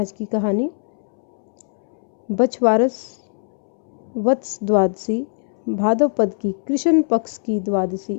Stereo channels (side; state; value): right; silent; 65 dB below the other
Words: की कहानी। बछवारस वत्स द्वादशी भाद्रपद की कृष्ण पक्ष की द्वादशी